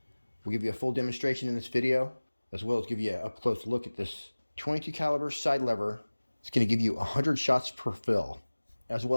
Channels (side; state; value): both; inverted; correlation -1.00